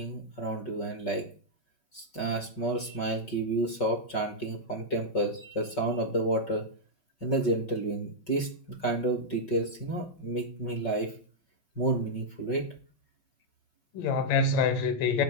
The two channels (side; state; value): right; late; 5.4 ms